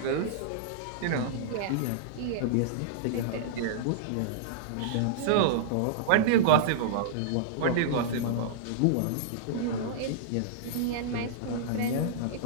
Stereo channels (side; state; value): both; different; correlation -0.02